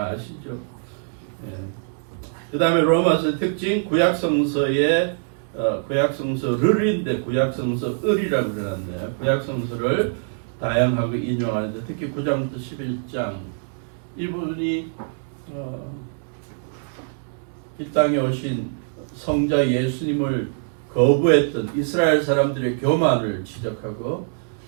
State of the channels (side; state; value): left; silent; 63 dB below the other